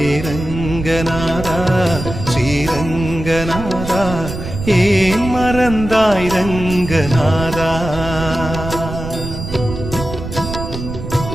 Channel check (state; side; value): noise; right; rumble, 8 dB below the sound